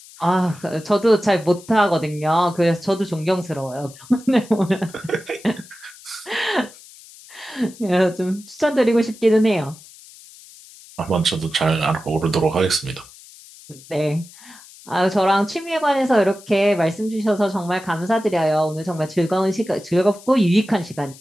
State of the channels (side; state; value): left; noise; hiss, 21 dB below the sound